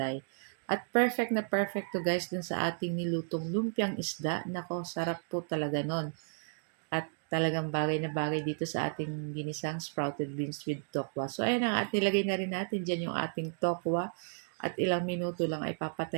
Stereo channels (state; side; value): silent; left; digital silence